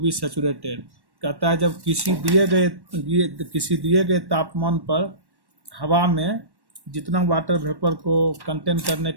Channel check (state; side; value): late; left; 1.1 ms